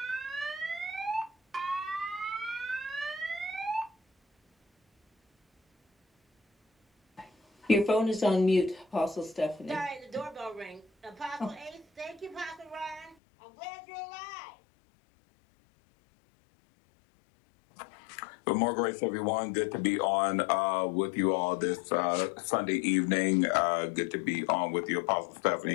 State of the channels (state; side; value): drops out; right; at 13.2 s